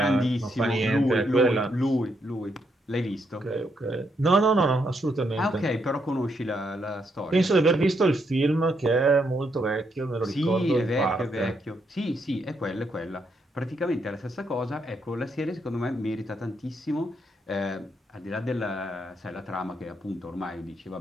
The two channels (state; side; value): normal; both; correlation 0.77